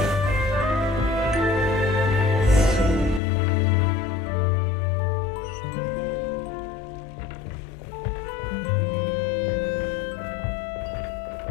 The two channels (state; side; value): drops out; right; at 3.2 s